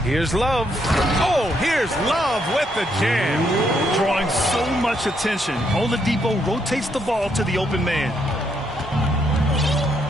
Here's Love. Oh, here's Love with the jam. Drawing so much attention, Oladipo rotates the ball to the open man.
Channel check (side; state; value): both; normal; correlation 0.75